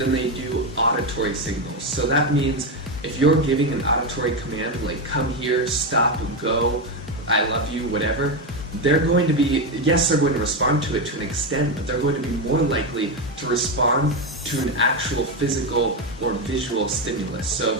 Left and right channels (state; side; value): normal; both; correlation 0.10